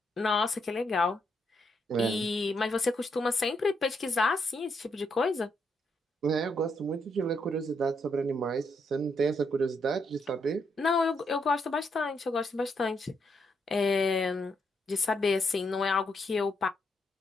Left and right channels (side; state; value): both; normal; correlation 0.77